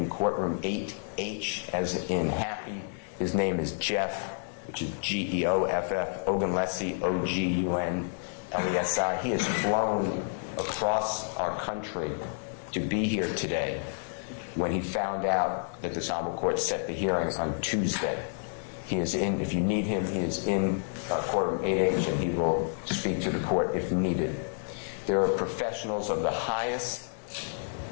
courtroom 8H, as in happy. His name is Jeff, which is Geoff, Ogunlesi, Ogunlesi. He has flown across our country to be here today. when he found out that this honorable court set the hearing on Tuesday. He is in, if you need him, he is in courtroom 8H, and he will speak to the court if needed. There are professionals of the highest,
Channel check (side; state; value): right; silent; digital silence